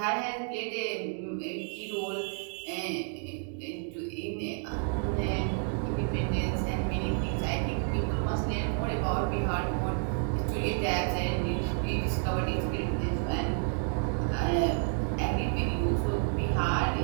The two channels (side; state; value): left; silent; 58 dB below the other